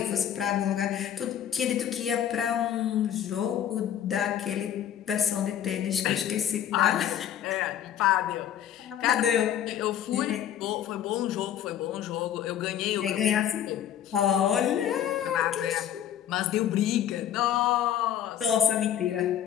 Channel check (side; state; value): right; quieter; 10.2 dB